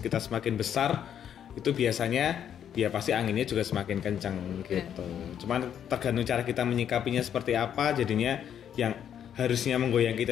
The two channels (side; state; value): right; quieter; 9.2 dB